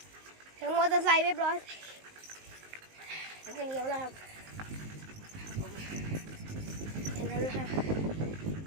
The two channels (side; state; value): left; late; 19 ms